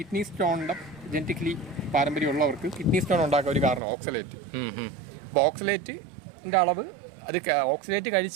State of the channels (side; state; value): left; drops out; at 3.8 s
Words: സ്റ്റോണിന്റെ ജനറ്റിക്കലി പാരമ്പര്യമുള്ളവർക്ക് കിഡ്നി സ്റ്റോൺ ഉണ്ടാക്കാൻ ഒരു കാരണം ഓക്സലേറ്റ്. അപ്പൊ ഓക്സലേറ്റിന്റെ അളവ്, അത് ഓക്സലേറ്റ്